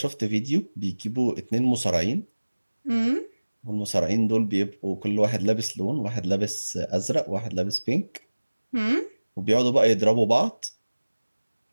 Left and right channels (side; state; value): both; inverted; correlation -1.00